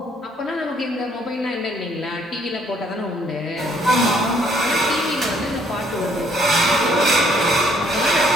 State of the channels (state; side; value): normal; both; correlation 0.65